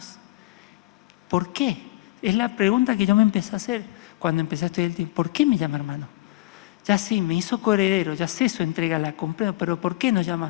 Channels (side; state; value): right; quieter; 19.0 dB